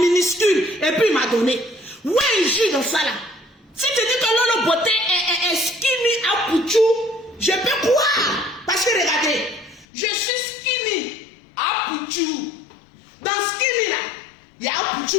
Et puis il m'a donné. Où est le jus dans ça là? Si tu dis que Lolo Beauté est skinny à Pouchou, je peux croire. Parce que regardez, je suis skinny à Pouchou. Dans skinny là, il y a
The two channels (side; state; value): right; drops out; at 9.9 s